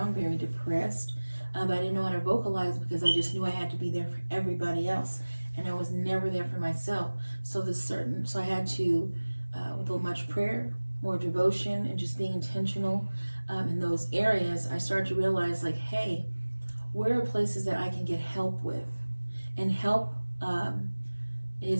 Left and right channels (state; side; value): inverted; both; correlation -1.00